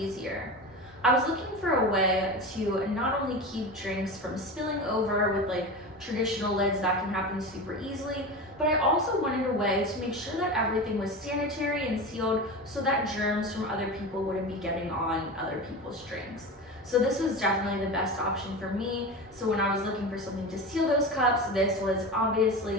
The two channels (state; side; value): normal; both; correlation 0.26